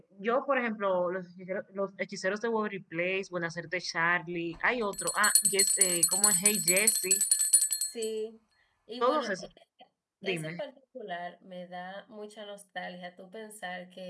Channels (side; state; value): both; identical; correlation 1.00